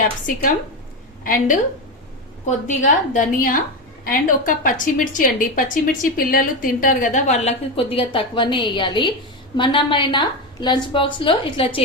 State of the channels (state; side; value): normal; both; correlation 0.14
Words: అండ్ కొద్దిగా ధనియా అండ్ ఒక పచ్చిమిర్చి అండి. పచ్చిమిర్చి పిల్లలు తింటారు కదా, వాళ్ళకి కొద్దిగా తక్కువనే వేయాలి. మనమైనా లంచ్ బాక్స్ లో ఇట్లా